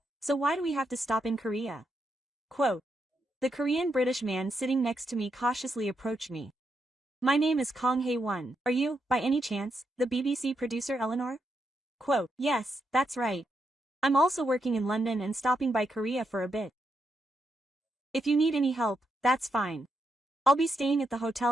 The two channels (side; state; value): both; normal; correlation 0.82